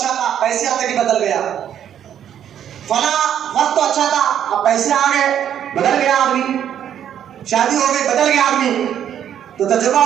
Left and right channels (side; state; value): left; quieter; 9.8 dB